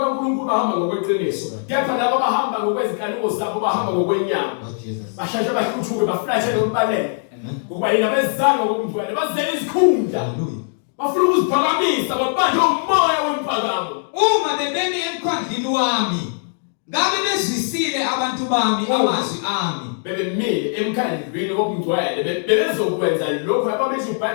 bahamba ngokweqiniso. Kepha labo abahamba ngokwezinkanuko zabo bahamba ngokwenyama. Bashasha bahluthuke baflashe lokubaleka. Ngoba yena bezanga ngokungcwele bazela izikhundla. Bafuna ukuziphakamisa babanje umoya wemphakamo. Uma bebemi emkhandlwini wami, ngabe bezwisile abantu bami amazwi ami. Bebemile emkhandlwini wokungcwele bebezokwenza lokho ababethi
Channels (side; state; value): right; silent; digital silence